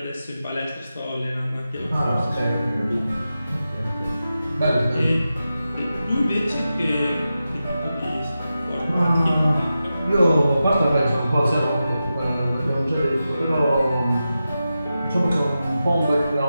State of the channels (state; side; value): inverted; both; correlation -0.91